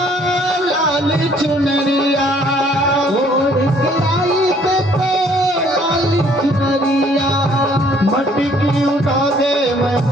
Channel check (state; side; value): normal; both; correlation 0.61